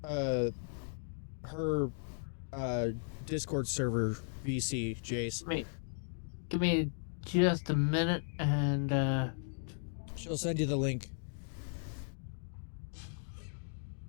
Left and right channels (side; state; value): right; silent; digital silence